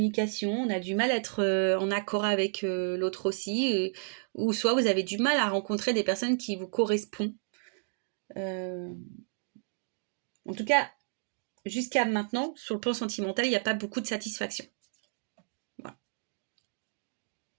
on a du mal à être en accord avec l'autre aussi, ou soit vous avez du mal à rencontrer des personnes qui vous correspondent. En tout cas, jusqu'à maintenant, sur le plan sentimental, il n'y a pas beaucoup de satisfaction. Voilà.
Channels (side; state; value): left; silent; digital silence